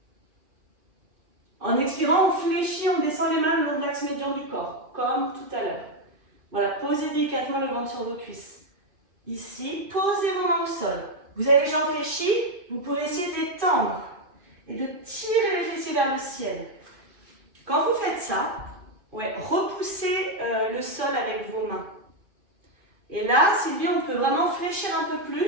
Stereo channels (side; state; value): left; late; 2.5 ms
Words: En expirant, on fléchit, on descend les mains le long de l'axe médian du corps, comme tout à l'heure. Voilà, posez délicatement le ventre sur vos cuisses. Ici, posez vos mains au sol. Vous avez les jambes fléchies, vous pouvez essayer de les tendre et de tirer les fessiers vers le ciel. Quand vous faites ça, repoussez le sol avec vos mains. Et là, Sylvie, on peut vraiment fléchir un peu